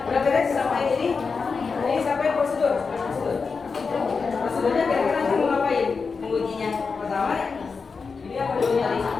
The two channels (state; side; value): quieter; right; 4.9 dB